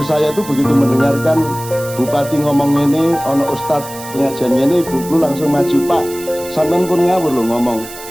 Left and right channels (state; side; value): noise; right; hiss, 14 dB below the sound